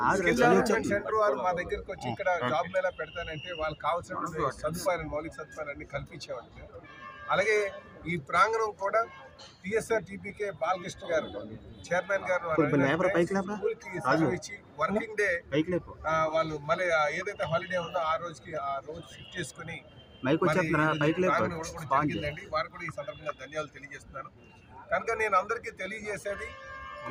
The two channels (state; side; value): identical; both; correlation 1.00